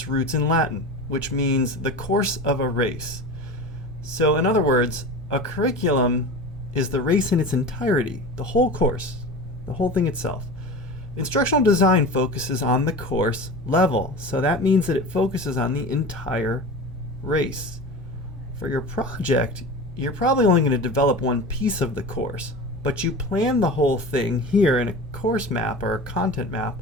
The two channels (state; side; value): normal; both; correlation 0.32